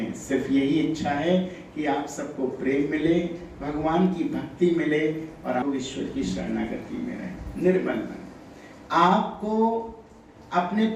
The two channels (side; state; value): both; identical; correlation 1.00